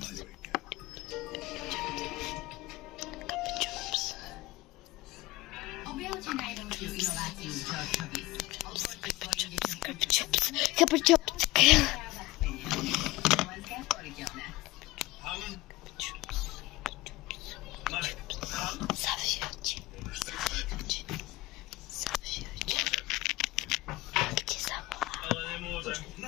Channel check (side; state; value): right; quieter; 19.8 dB